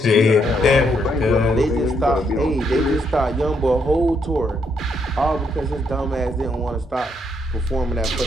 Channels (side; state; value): both; normal; correlation 0.75